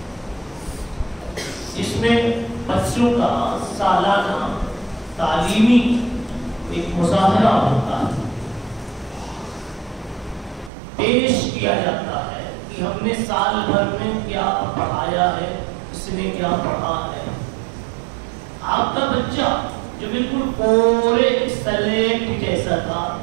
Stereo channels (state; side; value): drops out; left; at 10.7 s